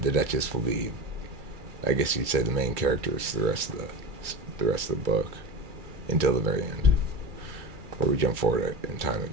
the Duchess will be, I guess you'd say, the main characters for the rest of the book until the very end, where we jump forward in time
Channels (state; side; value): late; left; 2.3 ms